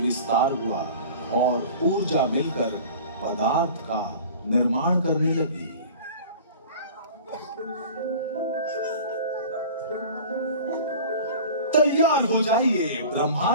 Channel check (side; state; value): both; inverted; correlation -0.40